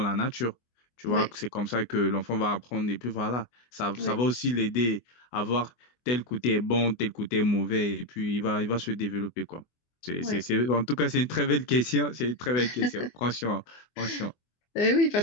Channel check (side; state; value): right; late; 24 ms